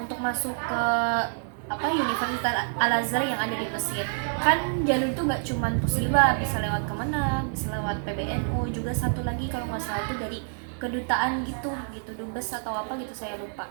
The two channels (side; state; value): left; silent; digital silence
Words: masuk ke Universitas Al Azhar yang ada di Mesir. Kan jalur itu nggak cuman Posiba, bisa lewat Kemenang, bisa lewat PBNU, juga satu lagi kalau nggak salah itu dari kedutaan gitu, dubes atau apa gitu, saya lupa